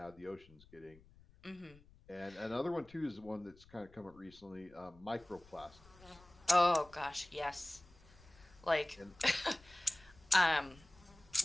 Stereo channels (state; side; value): noise; left; rumble, 24 dB below the sound